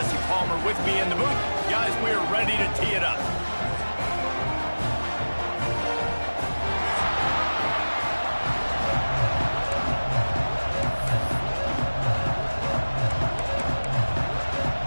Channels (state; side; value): inverted; both; correlation -1.00